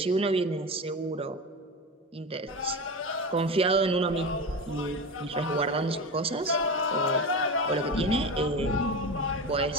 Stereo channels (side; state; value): both; normal; correlation 0.24